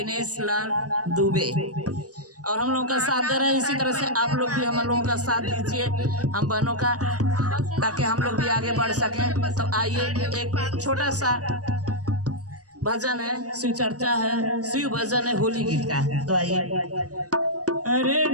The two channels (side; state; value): left; late; 0.67 ms